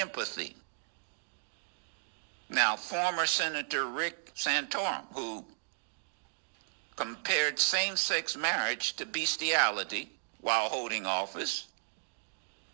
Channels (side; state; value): left; silent; digital silence